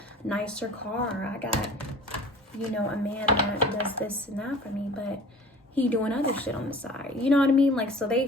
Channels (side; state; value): both; normal; correlation 0.45